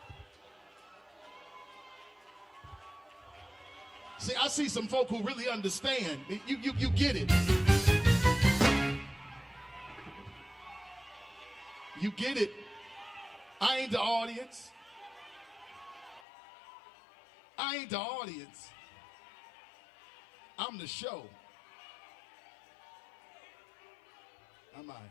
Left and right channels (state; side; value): drops out; right; at 16.2 s